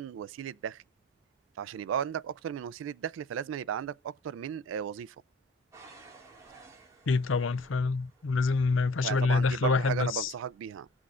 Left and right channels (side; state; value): both; normal; correlation 0.48